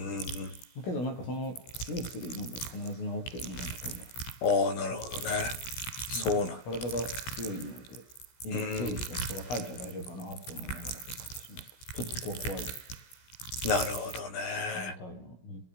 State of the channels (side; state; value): right; late; 16 ms